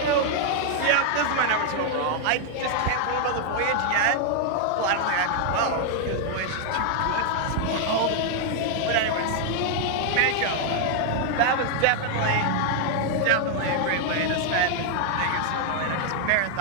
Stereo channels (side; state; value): both; different; correlation 0.00